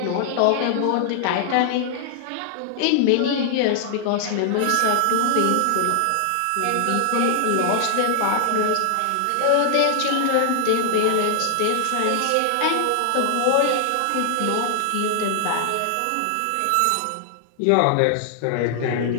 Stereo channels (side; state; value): both; different; correlation 0.00